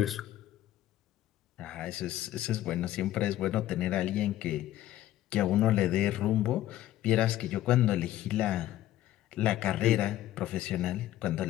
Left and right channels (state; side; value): quieter; right; 13.8 dB